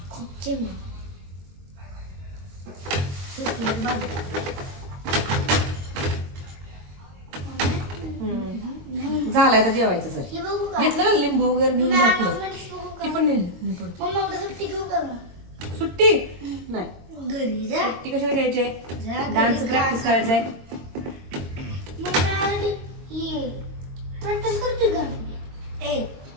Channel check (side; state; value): left; late; 22 ms